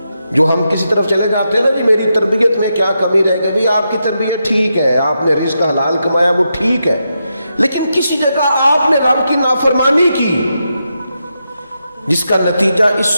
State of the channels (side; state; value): both; inverted; correlation -0.85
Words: جو ہم کسی طرف چلے جاتے ہیں نا، جی میری تربیت میں کیا کمی رہ گئی، آپ کی تربیت ٹھیک ہے، آپ نے رزق حلال کمایا وہ ٹھیک ہے، لیکن کسی جگہ آپ نے رب کی نافرمانی کی جس کا نتیجہ اس